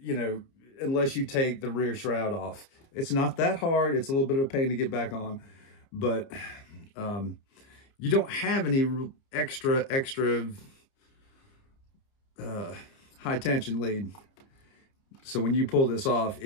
know, unless you take the rear shroud off. It's not that hard. It's a little bit of a pain to get back on, but you don't have any extra high tension lead. So when you pull this off,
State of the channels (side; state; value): right; late; 29 ms